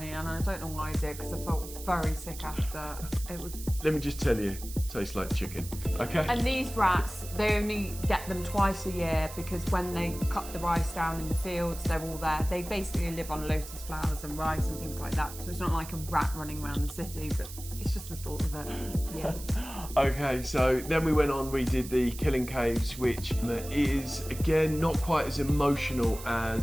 and I don't know why I did, because I felt very sick after. It was. Let me just tell you, tastes like chicken. Okay. And these rats, they only get them twice a year, because when they cut the rice down in the fields, they're all there. They basically live on lotus flowers and rice and things like that. So it's not like a rat running around the city, but it's just the thought of it. Yeah. Okay, so then we went on, we did the Killing Caves, which is, again, not quite as emotional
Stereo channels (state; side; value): noise; right; hiss, 13 dB below the sound